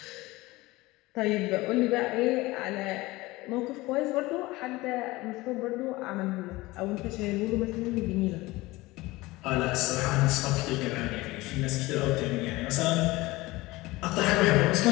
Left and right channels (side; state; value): right; quieter; 20.4 dB